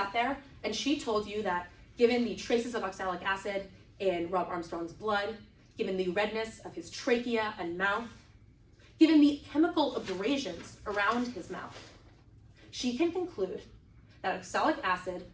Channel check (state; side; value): identical; both; correlation 1.00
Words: there and she told you that given the traces of oxalic acid in Rob Armstrong's blood, given the redness of his trachea and mouth, given the chemical abrasions around his mouth, she can conclude that oxalic acid